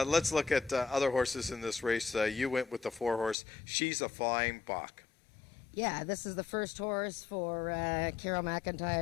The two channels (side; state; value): right; drops out; at 3.4 s